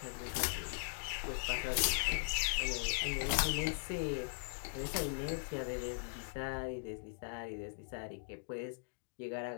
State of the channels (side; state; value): right; silent; digital silence